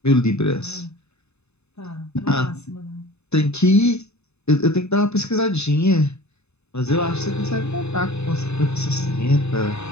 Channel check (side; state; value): right; late; 0.80 ms